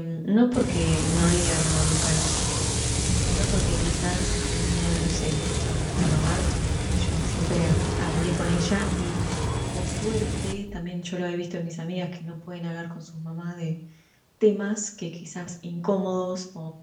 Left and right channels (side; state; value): both; identical; correlation 1.00